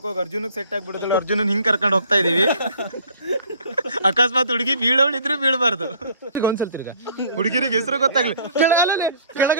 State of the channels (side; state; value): both; inverted; correlation -0.55